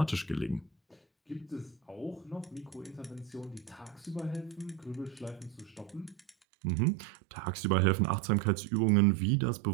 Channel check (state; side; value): drops out; left; at 6.3 s